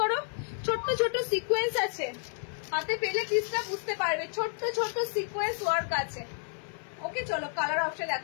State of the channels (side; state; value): right; silent; 57 dB below the other